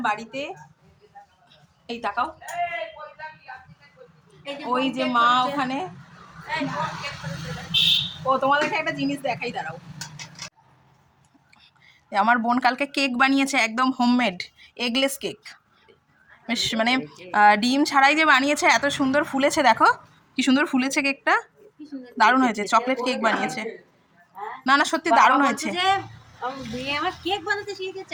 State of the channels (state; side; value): identical; both; correlation 1.00